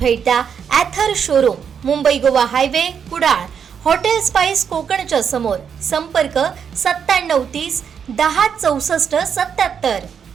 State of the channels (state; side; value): quieter; left; 7.3 dB